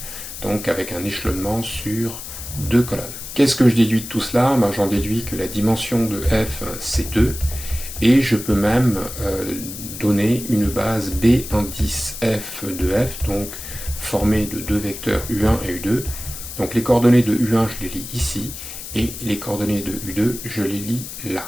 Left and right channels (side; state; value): left; noise; hiss, 10 dB below the sound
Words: donc avec un échelonnement sur deux colonnes. Qu'est-ce que je déduis de tout cela? J'en déduis que la dimension de f, c'est 2, et je peux même donner une base B indice f de f, donc formée de deux vecteurs U1 et U2. Donc les coordonnées de U1, je les lis ici, et les coordonnées de U2, je les lis